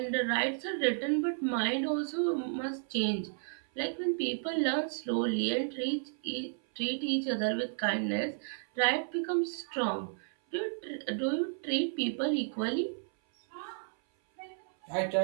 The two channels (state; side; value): silent; left; 56 dB below the other